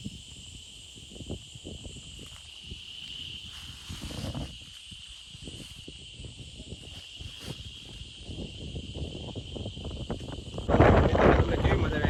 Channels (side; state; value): both; identical; correlation 1.00